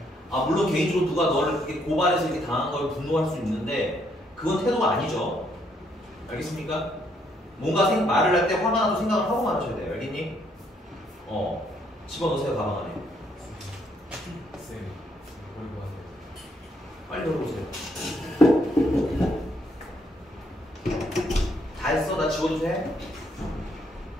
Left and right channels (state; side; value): normal; both; correlation 0.71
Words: 물론 개인적으로 누가 너를 이렇게 고발해서 이렇게 당한 걸 분노할 수 있는데 그건 태도가 아니죠. 알겠습니까? 뭔가 말을 할 때 화가 나도 생각을 하고 말하셔야 돼요. 알겠니? 집어넣으세요 가방 안에. 쌤 얼굴 빨리 열어보세요. 다 했어? 나 지워도 돼?